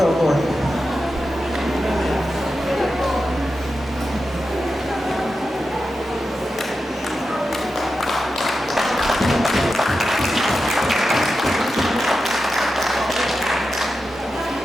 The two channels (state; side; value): normal; both; correlation 0.90